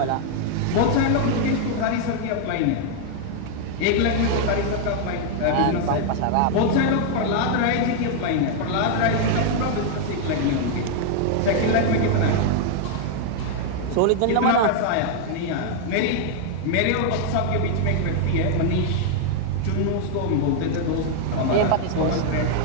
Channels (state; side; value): different; both; correlation 0.00